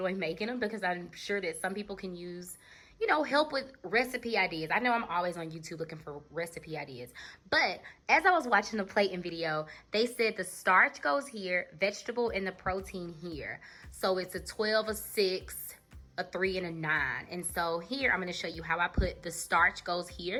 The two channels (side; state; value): both; identical; correlation 1.00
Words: making them because I'm sure that some people can use, you know, help with recipe ideas. I know I'm always on YouTube looking for recipe ideas, but as I was watching the plating video, they said the starch goes here, vegetable, and the protein here. So it's a 12, a 6, a 3, and a 9. And so here, I'm gonna show you how I put the starch goes